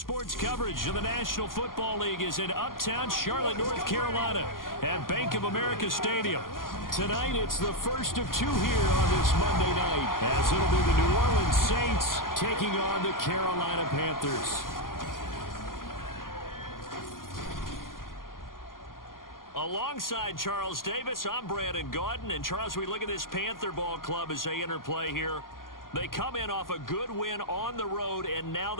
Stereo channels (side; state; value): right; late; 0.91 ms